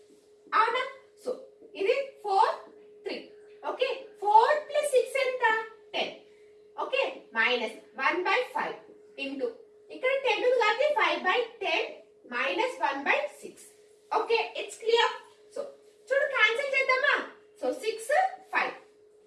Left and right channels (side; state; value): both; identical; correlation 1.00